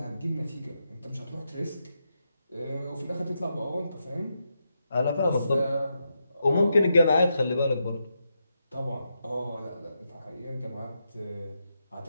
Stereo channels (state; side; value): inverted; both; correlation -0.84